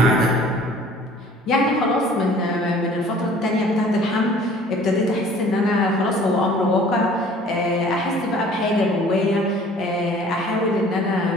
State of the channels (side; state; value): both; normal; correlation 0.51